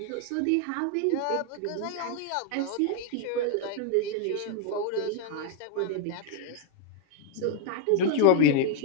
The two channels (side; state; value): both; different; correlation 0.00